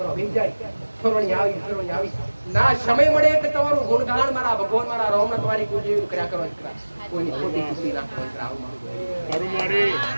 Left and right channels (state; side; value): inverted; both; correlation -1.00